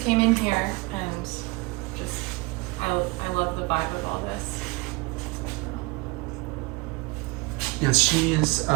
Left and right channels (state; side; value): quieter; left; 25.1 dB